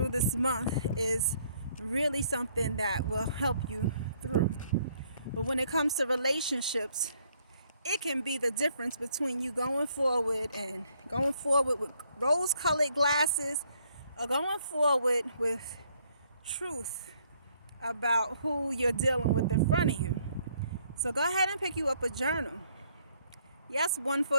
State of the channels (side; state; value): both; inverted; correlation -0.68